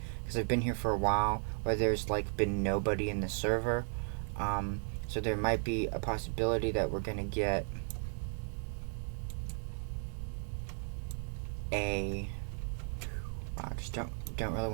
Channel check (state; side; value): silent; left; 54 dB below the other